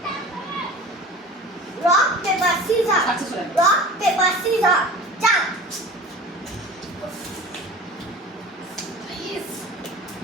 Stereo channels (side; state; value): both; normal; correlation 0.38